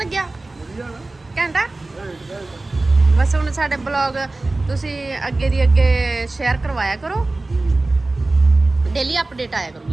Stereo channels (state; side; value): quieter; left; 3.1 dB